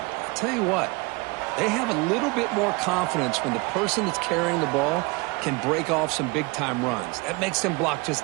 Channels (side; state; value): left; quieter; 26.7 dB